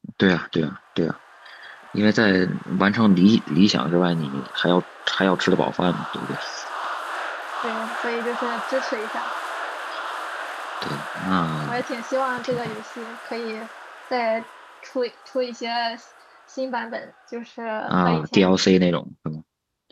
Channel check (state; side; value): identical; both; correlation 1.00